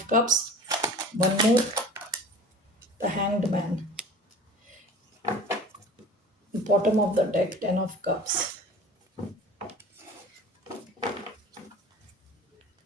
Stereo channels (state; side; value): normal; both; correlation 0.41